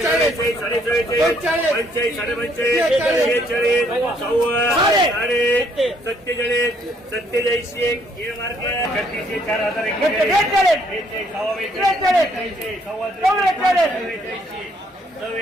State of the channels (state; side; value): normal; both; correlation 0.67